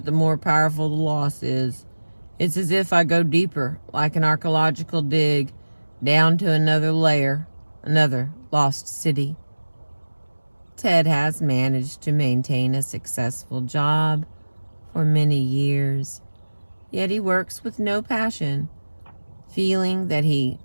the more powerful the loss is. It's as if I go deeper, like an archaeological dig, down to another layer, another lost city. Ted has managed to maintain a successful job for many years, yet he works with no passion, feeling that he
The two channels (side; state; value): both; inverted; correlation -1.00